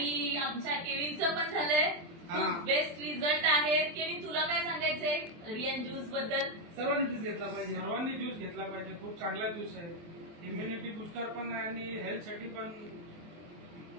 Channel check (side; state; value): left; late; 24 ms